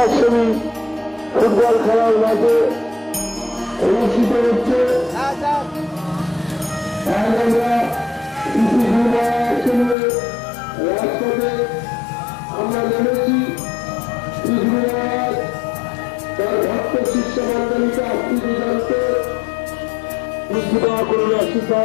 ফুটবল খেলার মাঠে অনুষ্ঠিত হচ্ছে। রাজপথে আমরা নেমেছি তার ভক্ত শিষ্য মন্ডলীকে আত্মীয় জানতে করুন,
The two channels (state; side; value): drops out; right; at 10.0 s